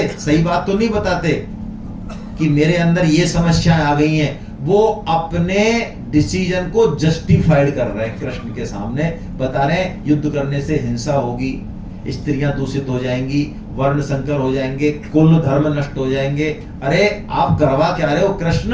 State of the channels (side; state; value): both; identical; correlation 1.00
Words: सही बात तो नहीं बताते कि मेरे अंदर ये समस्याएं आ गई हैं। वो अपने डिसीजन को जस्टिफाइड कर रहे हैं, कृष्ण के सामने बता रहे हैं युद्ध करने से हिंसा होगी, स्त्रियां दूषित हो जाएंगी, वर्ण संकर हो जाएंगे, कुल धर्म नष्ट हो जाएंगे। अरे आप करवा क्या रहे हो कृष्ण?